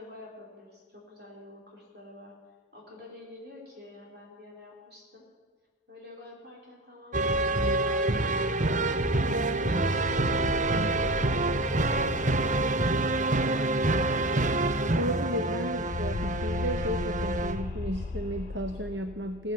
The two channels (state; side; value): normal; both; correlation 0.32